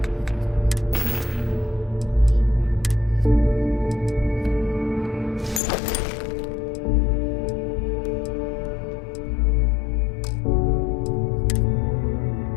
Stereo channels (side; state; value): right; drops out; at 5.6 s